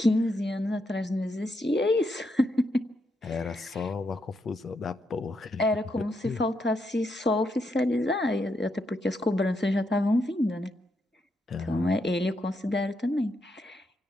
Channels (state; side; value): normal; both; correlation 0.80